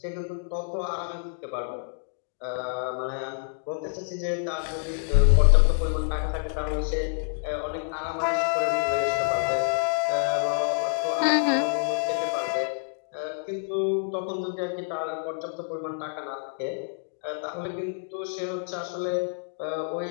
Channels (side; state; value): right; silent; 60 dB below the other